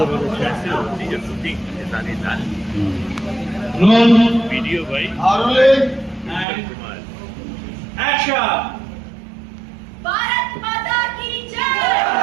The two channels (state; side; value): drops out; left; at 6.5 s